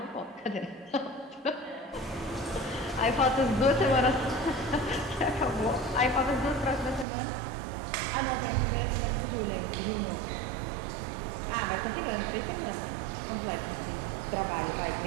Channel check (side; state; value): left; drops out; at 7.1 s